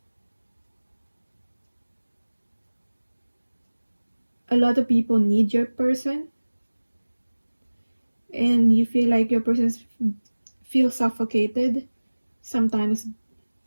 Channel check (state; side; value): inverted; both; correlation -1.00